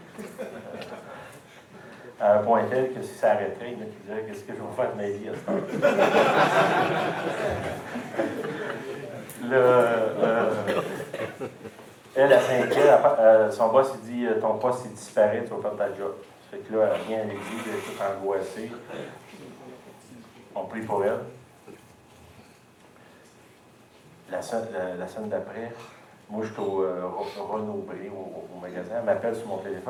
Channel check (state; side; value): identical; both; correlation 1.00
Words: À un point tel que si ça arrêterait, il me dirait, qu'est-ce que je vais faire de ma vie à ce temps? Elle, à 5 ans, son boss, il dit, ton poste, il disparaît, tu vas perdre ta job. Fait que là, elle vient avec lui, elle est toute angoissée. On prie pour elle. La semaine d'après, moi, je suis au Renaud-Bré, au magasin. Elle m'appelle sur mon